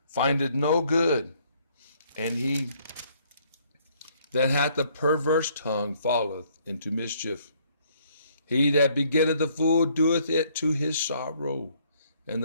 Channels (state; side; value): inverted; both; correlation -0.65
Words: findeth no good, and he that hath a perverse tongue falleth into mischief. He that begetteth a fool doeth it to his sorrow, and